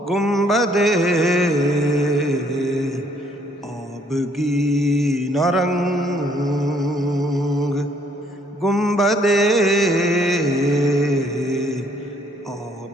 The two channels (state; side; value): normal; both; correlation 0.65